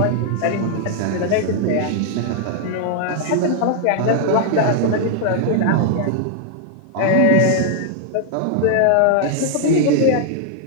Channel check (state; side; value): different; both; correlation 0.00